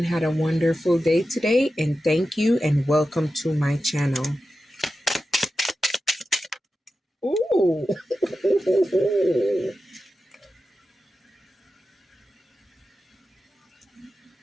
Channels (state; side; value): normal; both; correlation 0.92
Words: had a wonderful day today, and thank you and welcome to my channel. Ooh.